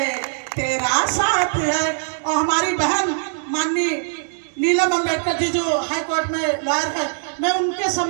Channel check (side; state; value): left; silent; digital silence